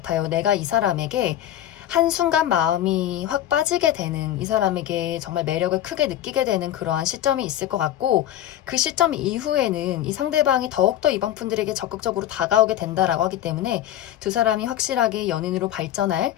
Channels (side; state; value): right; quieter; 12.1 dB